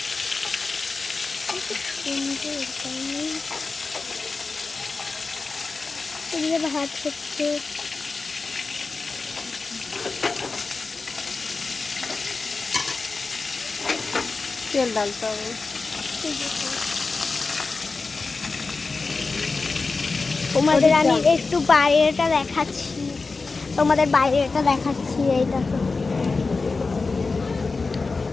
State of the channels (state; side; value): quieter; right; 4.0 dB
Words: ভাত হচ্ছে, তেল ডালতে হবে। তোমাদের আমি একটু বাইরেটা দেখাচ্ছি, তোমাদের বাইরেটা দেখাচ্ছি। এই দেখো,